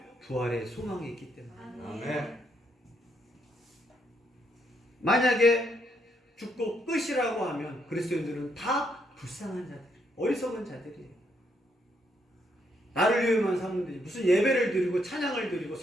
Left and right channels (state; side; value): normal; both; correlation 0.75